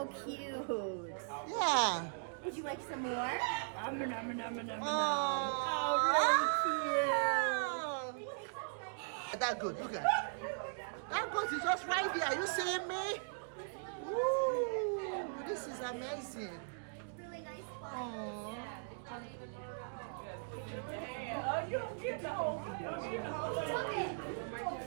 cute. Yeah. Would you like some more? Nom, nom, nom, nom, nom, nom. Oh, really cute. That good, look at it. That goat is just right there. Are you seeing me? Ooh, this is amazing. Really nice one. Aww. Ooh. No.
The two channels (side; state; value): left; silent; digital silence